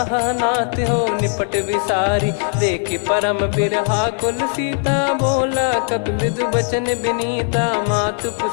नाथ हो निपट विसारी, देखि परम बिरहा कुल सीता। बोला कपि मृदु बचन बिनीता, मातु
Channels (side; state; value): right; silent; 59 dB below the other